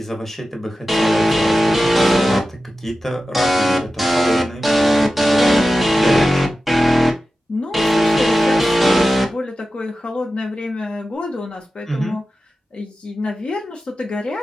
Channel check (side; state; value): both; normal; correlation 0.94